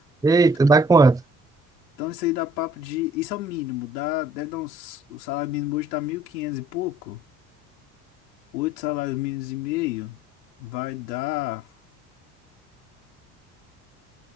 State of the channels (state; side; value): normal; both; correlation 0.58